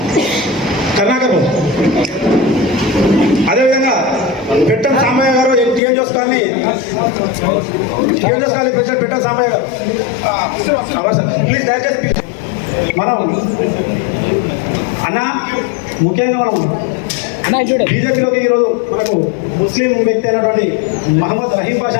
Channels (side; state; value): right; drops out; at 5.8 s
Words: అదేవిధంగా పెట్టం సాంబయ్య గారు టీఎంజోస్ కాలనీ ప్రెసిడెంట్ పెట్టం సాంబయ్య గారు, ప్లీజ్ దయచేసి మనం అన్న ముఖ్యంగా మనం బీజేపీలోకి ఈరోజు మనకు ముస్లిం వ్యక్తి అయినటువంటి మహమ్మద్ రహీం